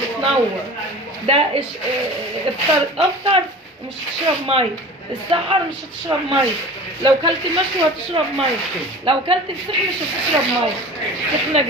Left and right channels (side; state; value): both; normal; correlation 0.38